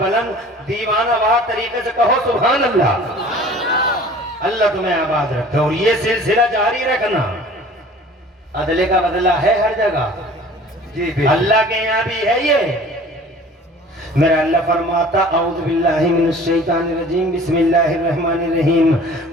بلند دیوانہ وار طریقے سے کہو سبحان اللہ. اللہ تمہیں آباد رکھے, اور یہ سلسلہ جاری رکھنا. عدلے کا بدلہ ہے ہر جگہ. جی بے اللہ کے یہاں بھی ہے یہ. میرا اللہ فرماتا اعوذ باللہ من الشیطان الرجیم بسم اللہ الرحمن الرحیم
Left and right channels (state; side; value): normal; both; correlation 0.46